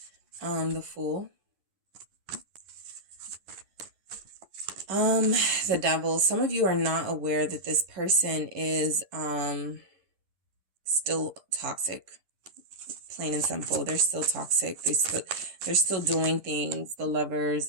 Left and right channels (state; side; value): late; left; 10 ms